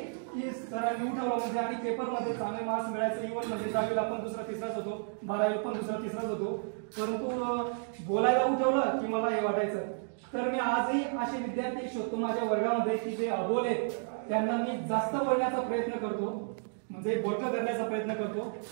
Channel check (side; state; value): left; silent; digital silence